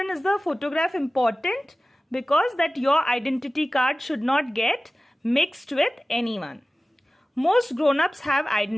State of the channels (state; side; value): normal; both; correlation 0.97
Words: is the photograph important? Because that your identity card should not get mixed with anyone. Most grown-ups have